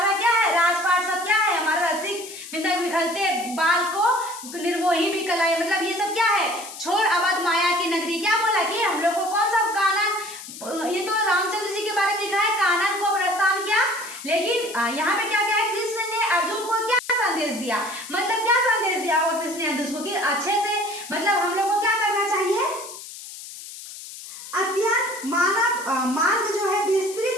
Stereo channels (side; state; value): left; noise; hiss, 13 dB below the sound